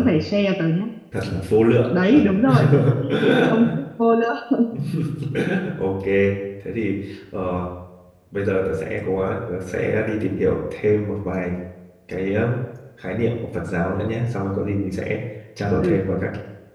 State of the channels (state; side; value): identical; both; correlation 1.00